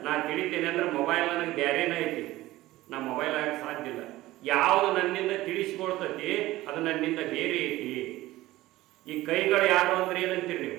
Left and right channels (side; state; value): left; quieter; 17.1 dB